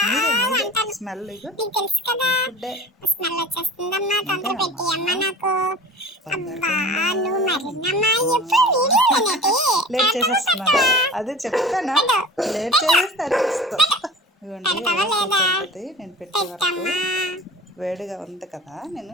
మీరే మీరే స్మెల్ ఫుడ్డే లేట్ చేసేస్తున్నాను. అదే చెప్తానా, లేట్ చేసేస్తే అరిపిస్తాం. ఇవ్వండి నేను పెట్టే వరకు వేడిగా ఉంది కదా, నేను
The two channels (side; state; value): both; normal; correlation 0.38